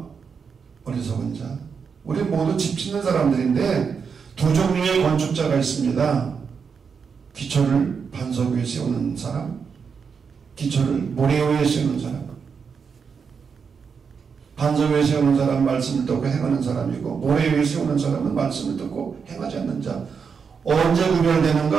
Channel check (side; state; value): left; quieter; 6.0 dB